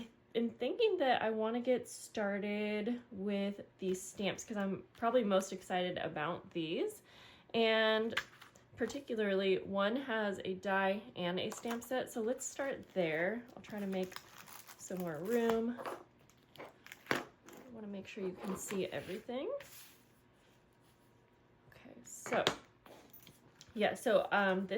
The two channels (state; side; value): identical; both; correlation 1.00